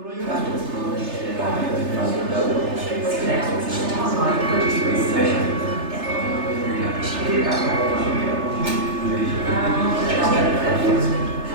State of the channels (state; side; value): late; left; 3.3 ms